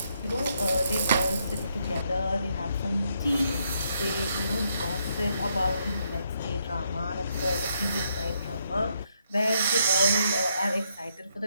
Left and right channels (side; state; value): both; inverted; correlation -0.76